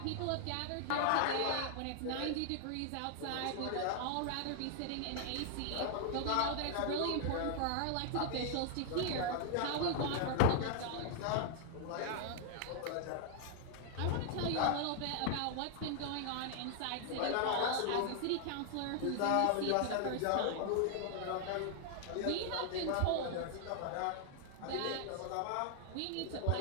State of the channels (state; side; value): different; both; correlation 0.00